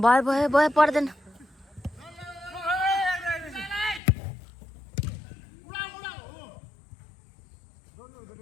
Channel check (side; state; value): right; drops out; at 4.0 s